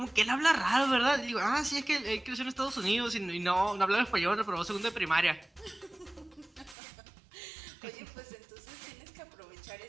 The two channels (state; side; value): drops out; left; at 6.8 s